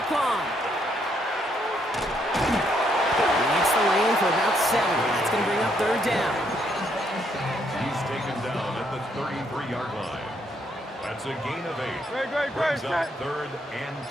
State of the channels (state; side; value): normal; both; correlation 0.73